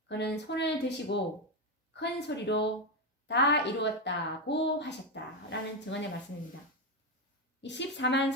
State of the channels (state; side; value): normal; both; correlation 0.09